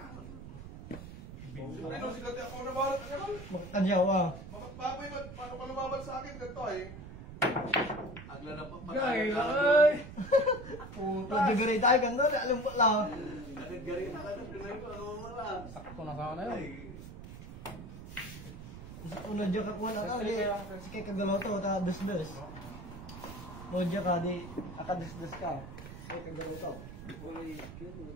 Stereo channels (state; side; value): noise; right; rumble, 12 dB below the sound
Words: Ano, sila ako na balat. Ano? Makakanyaw ah. Papoy, paano ka lumaban sa akin? Ganito ay. Agla na pa. Gay, ay! Puta. Nagagari tayo ganda. Alam po lang. Nagagari na ka na. Pinay ko. Ano mo lang. Sakto na sana yun. Unod dyan ka kuha na ka, si kay kagaloto, ta dus-dus. Unod dyan ka, di, aka dus-dus ka. Kay kagaloto. Uy, yun